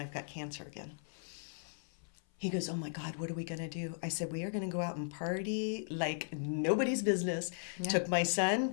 I've got cancer again. He goes, oh my God, what are we going to do? I said, we are going to go out and party like nobody's business. Yeah. Took my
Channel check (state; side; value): silent; right; 53 dB below the other